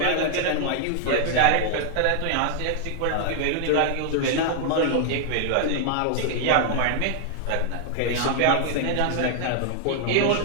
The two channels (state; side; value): different; both; correlation 0.00